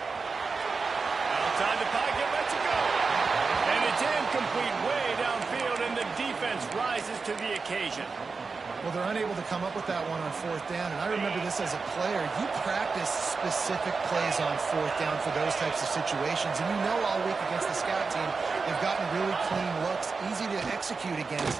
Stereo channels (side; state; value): left; quieter; 4.6 dB